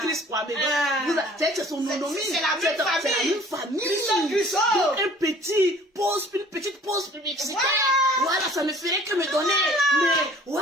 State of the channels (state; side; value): normal; both; correlation 0.52